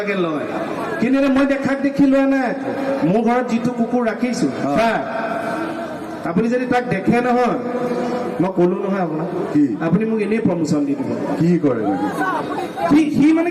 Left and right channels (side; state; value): both; identical; correlation 1.00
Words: লয় কিন্তু মই দেখাক দেখি লোৱা নাই মোৰ ঘৰত যিটো কুকুৰ ৰাখিছো আপুনি যদি তাক দেখে নহয় মই কলো নহয় আপোনাক আপুনি মোক এনেই প্ৰমোচন দি দিব কি কৰে সি মানে